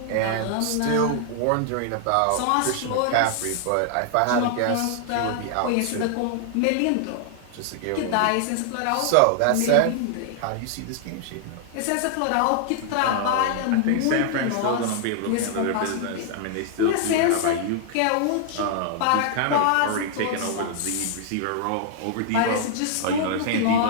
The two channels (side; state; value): both; different; correlation 0.00